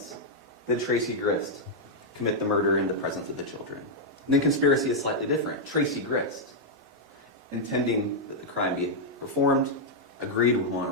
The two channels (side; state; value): both; normal; correlation -0.04